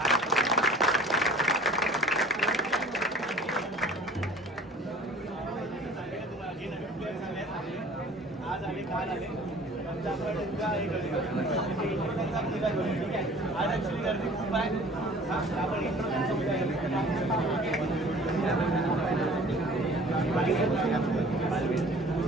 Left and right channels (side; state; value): both; normal; correlation 0.48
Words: आज आले काल आले आमच्या आपण उद्या हे करूया इंट्रोडक्शनचा उद्या करूया ठीक आहे आज ॲक्च्युली गर्दी खूप आहे आपण इंट्रोडक्शनचा उद्या